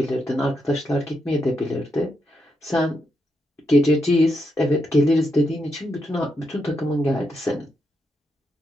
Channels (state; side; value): normal; both; correlation 0.82